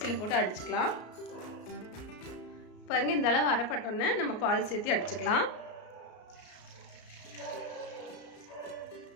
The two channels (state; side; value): late; right; 33 ms